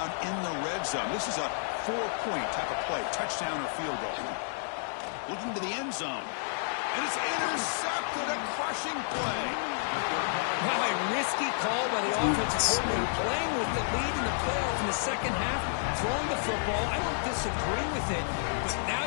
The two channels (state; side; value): silent; right; digital silence